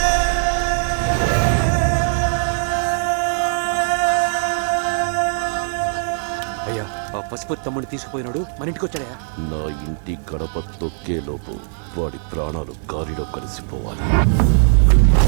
పశుపతి తమ్ముడిని తీసుకుపోయినాడు, మన ఇంటికి వచ్చాడా? నా ఇంటి గడప తొక్కే లోపు వాడి ప్రాణాలు గాలిలో కలిసిపోవాలి.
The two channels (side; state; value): left; silent; digital silence